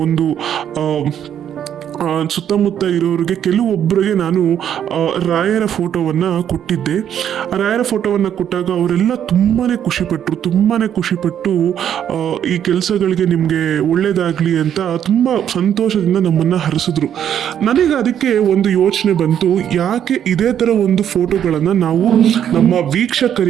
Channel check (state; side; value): quieter; left; 9.6 dB